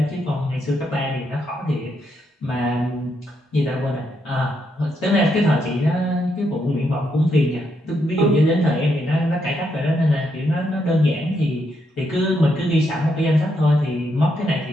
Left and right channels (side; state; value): both; normal; correlation 0.79